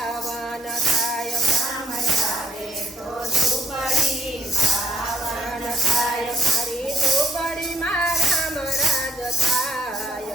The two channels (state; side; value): normal; both; correlation 0.68